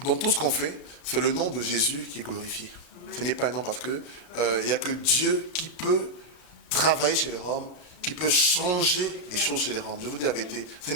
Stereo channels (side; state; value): right; late; 33 ms